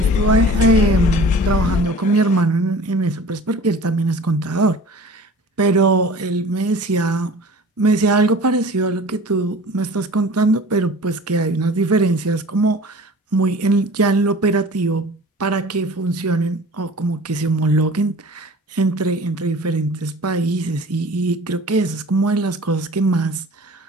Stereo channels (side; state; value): both; normal; correlation 0.42